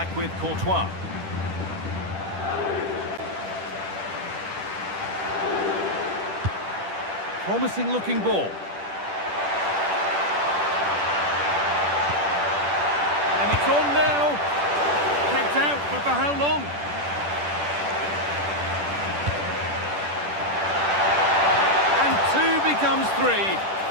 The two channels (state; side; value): late; left; 10 ms